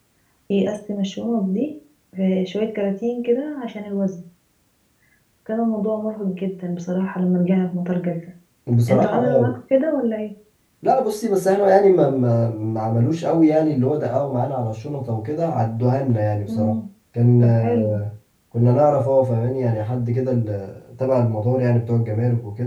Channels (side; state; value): both; identical; correlation 1.00